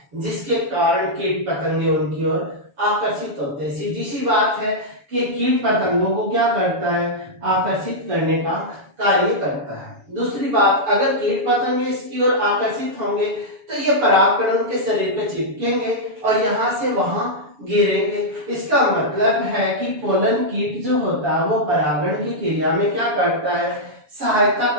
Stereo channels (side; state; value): left; late; 7.0 ms